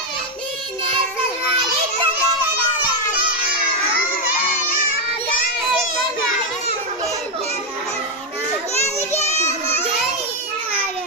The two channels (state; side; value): normal; both; correlation 0.04